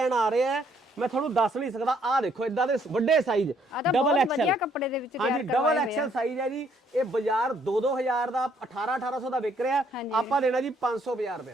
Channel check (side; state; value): both; normal; correlation 0.67